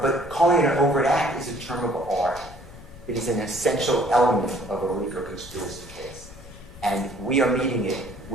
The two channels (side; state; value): left; noise; rumble, 17 dB below the sound